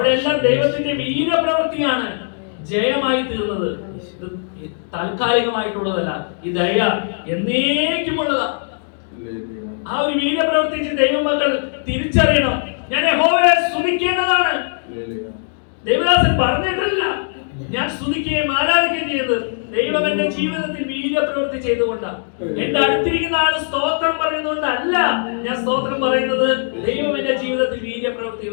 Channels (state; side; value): silent; right; digital silence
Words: ദൈവത്തിന്റെ വീര്യപ്രവൃത്തിയാണ് ജയമായി തീർന്നത്. ഇത് താൽക്കാലികമായിട്ടുള്ളതല്ല, ഈ ദയ എന്നേക്കുമുള്ളതാ. ആ ഒരു വീര്യപ്രവർത്തിച്ച് ദൈവമക്കൾ തിരിച്ചറിയണം. ഞാൻ യഹോവയെ സ്തുതിക്കേണ്ടതാണ്. ദൈവദാസൻ പറഞ്ഞിട്ടില്ല ഞാൻ സ്തുതിക്കുകയും ആരാധിക്കുകയും ചെയ്യുന്നത്. ദൈവം എന്റെ ജീവിതത്തിൽ വീര്യപ്രവൃത്തി ചെയ്തുകൊണ്ടാണ്. എന്റെ അടുത്തിരിക്കുന്ന ആൾ സ്തോത്രം പറയുന്നതുകൊണ്ടല്ല ഞാൻ സ്തോത്രം പറയുന്നത്, ദൈവം എന്റെ ജീവിതത്തിൽ